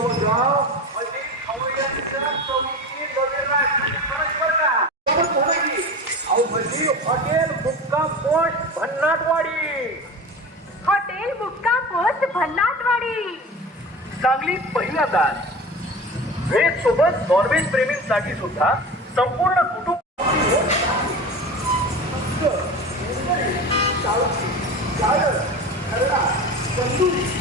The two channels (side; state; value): both; normal; correlation 0.31